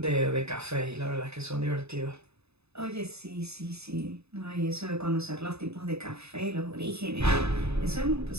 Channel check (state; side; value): late; left; 0.79 ms